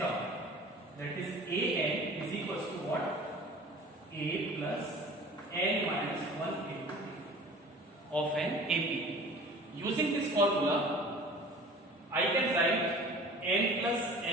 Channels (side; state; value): both; normal; correlation 0.43